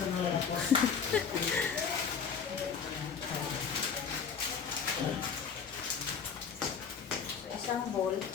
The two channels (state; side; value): quieter; right; 6.5 dB